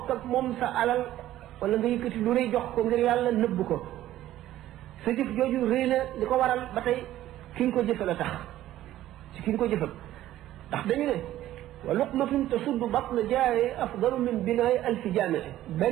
ak moom sa alal wala nga yëkkati lu rëy jox ko ngir yàlla nëbb ko sa jëf jooju rëy na li ko waral ba tey ki nga ko jëfal a tax ci ki nga ko jëfal ndax dañu ne wa luqmatun tasuddu batna jaaye afdalu min binaay alfi jaamee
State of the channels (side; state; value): left; quieter; 13.8 dB